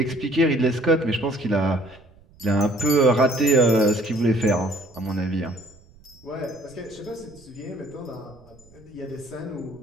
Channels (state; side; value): noise; right; rumble, 27 dB below the sound